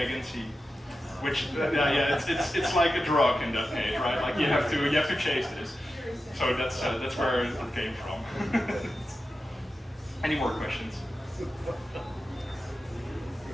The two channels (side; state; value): both; normal; correlation 0.91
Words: which it's like a drug in that case, right? Like you have to chase this. So that's where it came from. Any more questions?